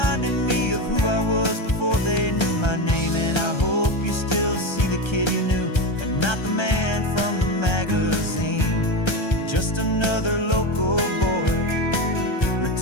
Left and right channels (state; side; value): late; right; 1.3 ms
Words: me of who I was before they knew my name. And I hope you still see the kid you knew and not the man from the magazine. Just another local boy